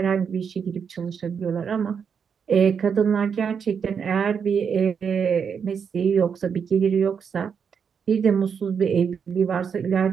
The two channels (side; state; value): left; quieter; 6.8 dB